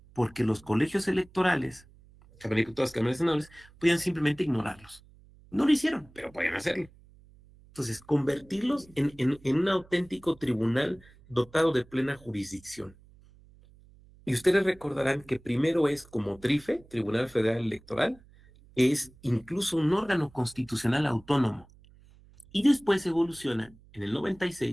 porque los colegios electorales, todas las cámaras senadores, podían simplemente ignorarlos. No lo hicieron, pero podían hacerlo. Entonces, convertirlos en un auténtico tribunal dotado de plena jurisdicción. Y ustedes recordarán que primero es como TRIFE, Tribunal Federal Electoral, es incluso un órgano constitucional autónomo. Y después evoluciona en el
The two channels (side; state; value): right; noise; hum, 26 dB below the sound